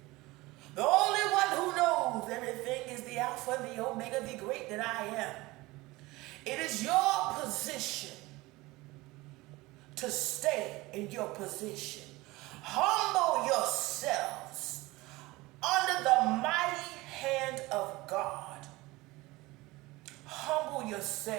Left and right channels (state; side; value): quieter; left; 20.8 dB